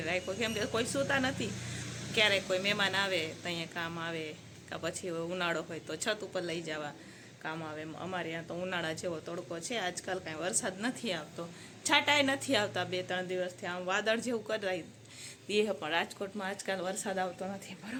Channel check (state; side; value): identical; both; correlation 1.00